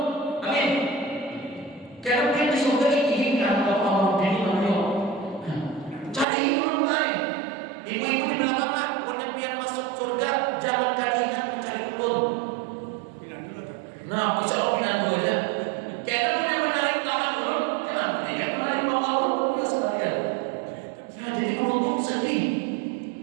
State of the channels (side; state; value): left; drops out; at 6.2 s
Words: amin. Karena pian di surga ini adalah kamu dini namanya. Cari belum lain, ibu-ibu di belakang lah, punya pian masuk surga jangan kali ingat mencari belum. Nah, bisa Allah pindah dua aja. Karena punya menarik tangan belum, kenapa dia menarik bawah belum sekalian. Ya jadi beruntung sedih.